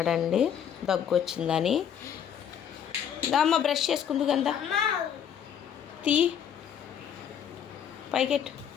దగ్గు వచ్చిందని. అమ్మ బ్రష్ చేసుకుంది కదా, తీ పైకెట్టు.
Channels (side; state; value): right; quieter; 8.7 dB